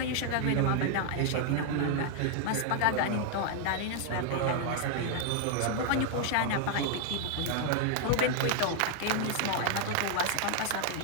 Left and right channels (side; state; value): both; different; correlation 0.00